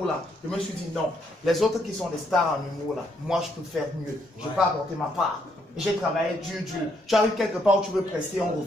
je me suis dit non, les autres qui sont des stars en humour là, moi je peux faire mieux, je peux apporter ma part. J'ai travaillé dur. Tu arrives quelque part où tu veux prester, on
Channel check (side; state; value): both; normal; correlation 0.73